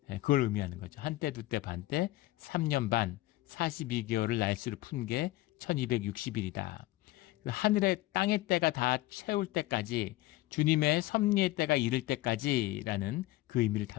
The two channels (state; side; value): quieter; right; 17.6 dB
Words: 그걸 의미하는 거죠. 한때, 두때, 반때, 3년 반, 42개월을 날수를 푼 게 1260일이다. 하늘의 땅의 때가 다 채울 때까지, 주님의 섭리의 때가 이를 때까지라는 그 의미를